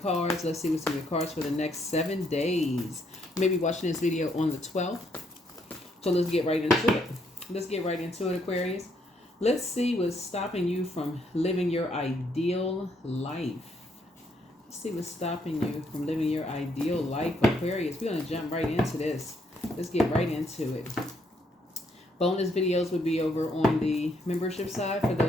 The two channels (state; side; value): normal; both; correlation 0.72